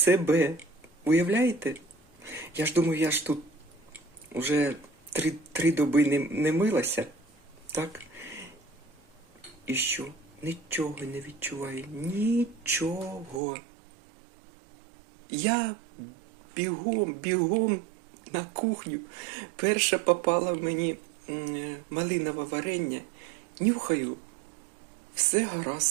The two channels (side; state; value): left; drops out; at 13.4 s